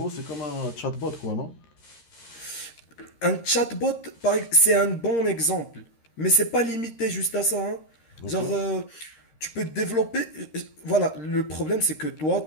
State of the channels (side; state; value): right; late; 13 ms